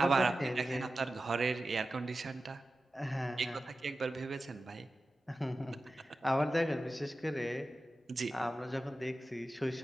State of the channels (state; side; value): normal; both; correlation 0.94